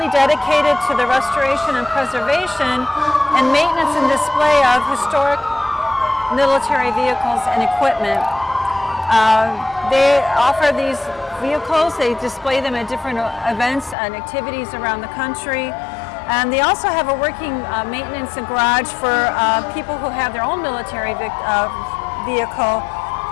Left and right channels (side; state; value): right; drops out; at 14.0 s